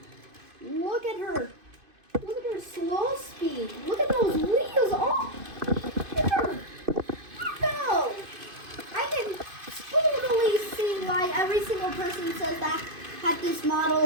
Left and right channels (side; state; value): left; late; 2.5 ms